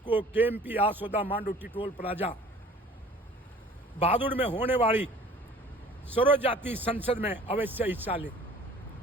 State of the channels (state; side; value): normal; both; correlation 0.49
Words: केएमपी आसोदा मांडोटी टोल प्लाजा बहादुर में होने वाली सर्व जाति संसद में अवश्य हिस्सा लें।